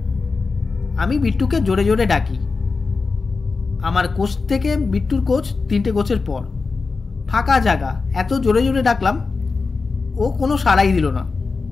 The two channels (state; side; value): quieter; right; 4.3 dB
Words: আমি বিট্টুকে জোরে জোরে ডাকি। আমার কোচ থেকে বিট্টুর কোচ 3টে কোচের পর, ফাঁকা জায়গা, এত জোরে জোরে ডাকলাম, ও কোনো সাড়াই দিল না।